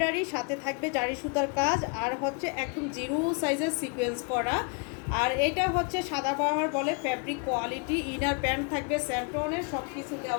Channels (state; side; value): quieter; right; 34.5 dB